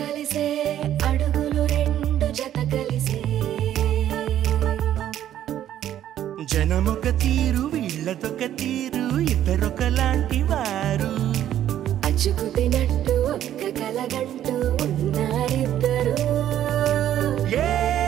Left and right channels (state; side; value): quieter; left; 11.4 dB